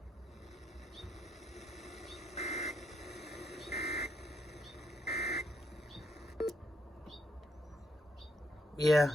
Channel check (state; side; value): normal; both; correlation 0.75